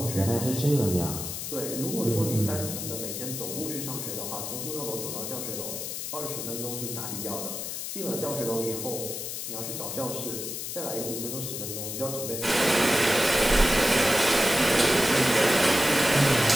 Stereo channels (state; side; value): noise; left; hiss, 5 dB below the sound